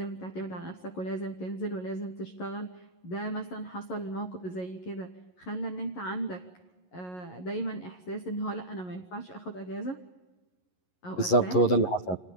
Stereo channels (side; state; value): right; late; 11 ms